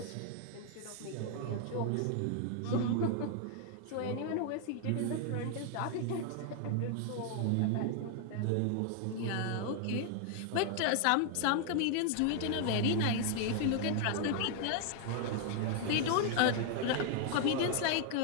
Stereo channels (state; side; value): different; both; correlation 0.00